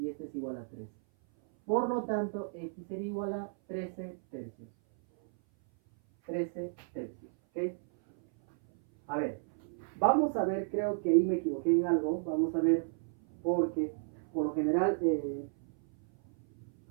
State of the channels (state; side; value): silent; left; 56 dB below the other